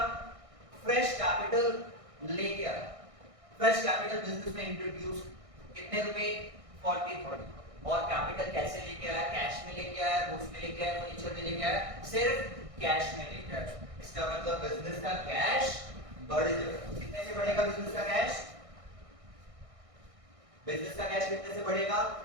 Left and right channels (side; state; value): left; late; 1.6 ms